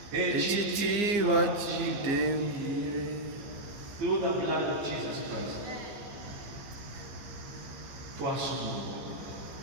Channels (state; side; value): late; left; 15 ms